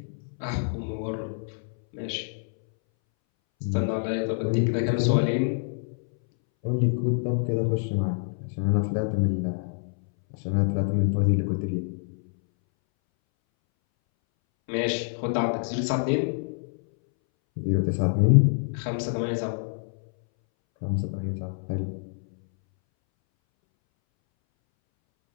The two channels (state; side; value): silent; right; 61 dB below the other